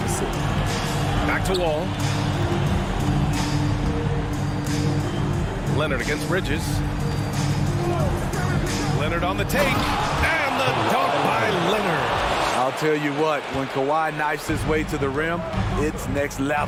Back to Wall. Leonard against Bridges. Leonard on the take. And the dunk by Leonard. I'll tell you what, when Kawhi knifes his way to the rim, it's next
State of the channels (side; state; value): both; identical; correlation 1.00